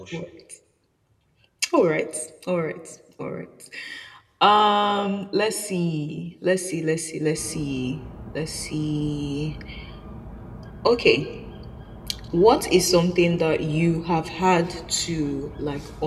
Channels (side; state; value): both; identical; correlation 1.00